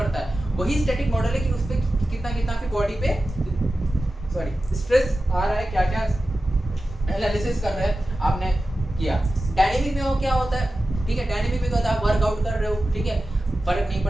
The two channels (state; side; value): normal; both; correlation 0.94